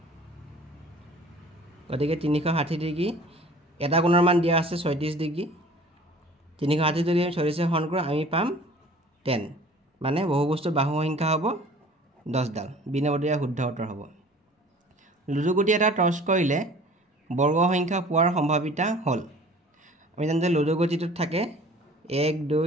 গতিকে 360 ডিগ্ৰী এটা কোণৰ মান দিয়া আছে 36 ডিগ্ৰী 360 যদি 36 হৰণ কৰোঁ আমি পাম 10 মানে বহুভুজটোৰ বাহুৰ সংখ্যা হ'ব 10 ডাল বি নম্বৰটো ইয়াৰ শুদ্ধ উত্তৰ হ'ব লুডুগুটি এটা টছ কৰিলে বৰ্গ সংখ্যা পোৱাৰ সম্ভাৱিতা হ'ল আমি জানো যে লুডুগুটিটোত থাকে 1 2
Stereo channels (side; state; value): both; normal; correlation 0.48